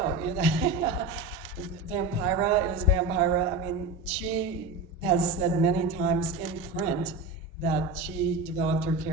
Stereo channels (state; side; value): quieter; left; 3.2 dB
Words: you know. Vampira is Vampira. I mean, she has said many times in print that she developed her